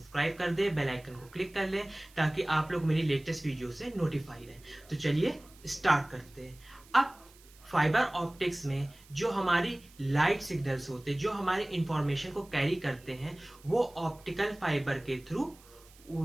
कर दे, बेल आइकन को क्लिक कर ले ताकि आप लोग मेरी लेटेस्ट वीडियो से नोटिफाई रहे। तो चलिए स्टार्ट करते हैं। अब फाइबर ऑप्टिक्स में जो हमारी लाइट सिग्नल्स होते हैं, जो हमारे इंफॉर्मेशन को कैरी करते हैं, वो ऑप्टिकल फाइबर के थ्रू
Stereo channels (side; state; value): right; noise; hiss, 25 dB below the sound